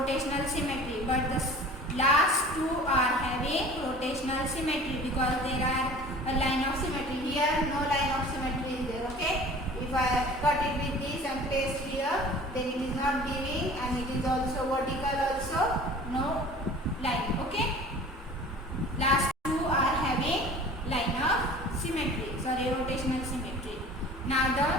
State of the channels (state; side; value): normal; both; correlation 0.44